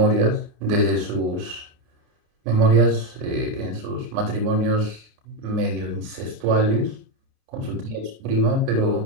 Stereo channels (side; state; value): left; late; 29 ms